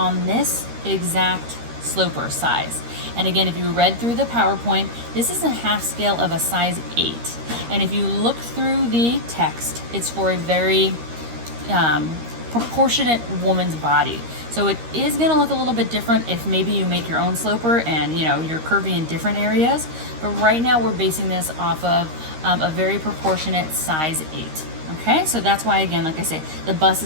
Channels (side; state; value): left; late; 13 ms